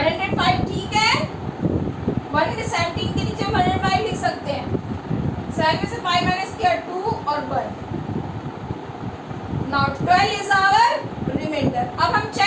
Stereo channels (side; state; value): both; identical; correlation 1.00